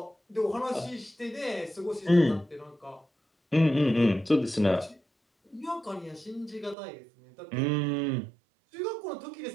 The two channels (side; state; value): left; drops out; at 6.8 s